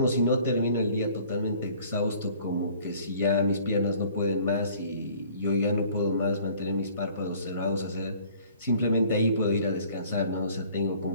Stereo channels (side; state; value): both; inverted; correlation -0.53